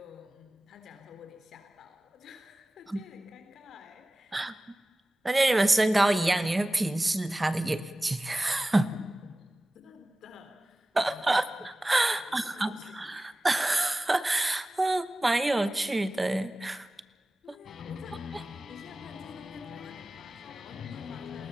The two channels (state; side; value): normal; both; correlation 0.97